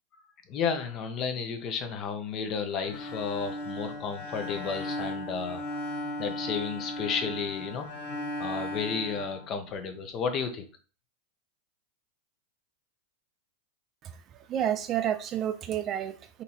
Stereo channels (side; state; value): both; normal; correlation 0.31